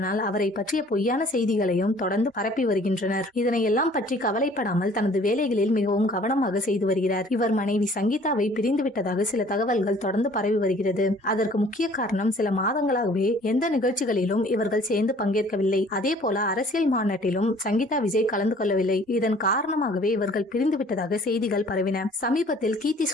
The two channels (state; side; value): normal; both; correlation 0.54